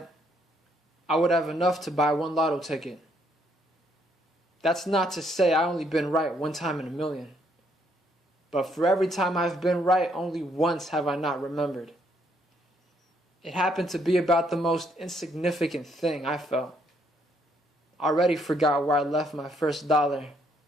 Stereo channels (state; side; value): normal; both; correlation 0.70